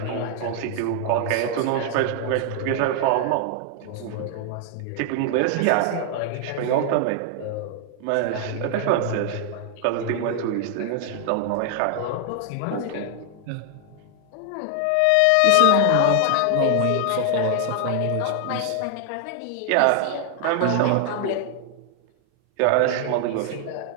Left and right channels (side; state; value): both; different; correlation 0.00